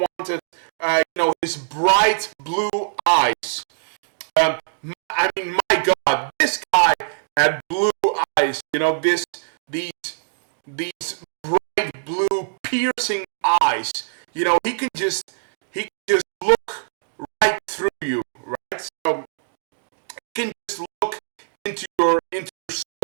his bright blue eyes. I mean, my God, this guy had blue eyes. These bright blue piercing eyes. He can just look right through you, right? So he can just look into your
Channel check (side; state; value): left; silent; digital silence